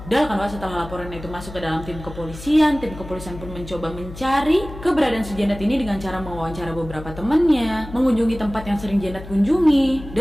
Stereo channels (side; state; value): left; noise; hum, 14 dB below the sound